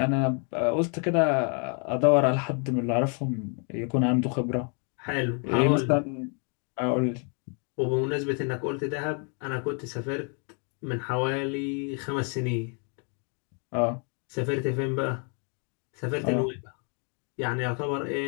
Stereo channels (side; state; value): right; quieter; 39.4 dB